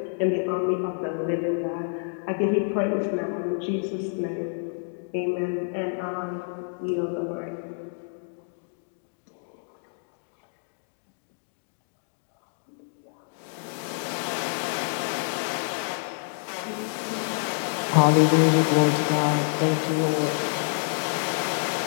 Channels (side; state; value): right; silent; digital silence